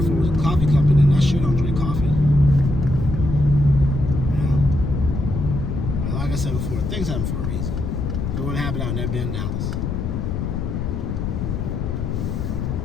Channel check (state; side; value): noise; left; rumble, 2 dB below the sound